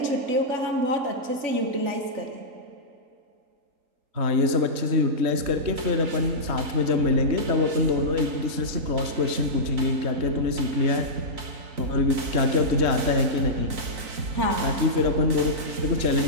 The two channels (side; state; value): left; late; 3.9 ms